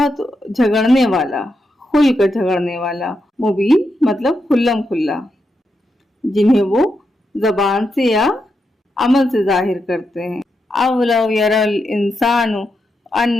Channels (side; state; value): both; normal; correlation 0.85